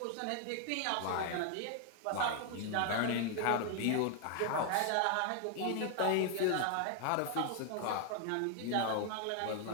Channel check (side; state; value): both; different; correlation 0.00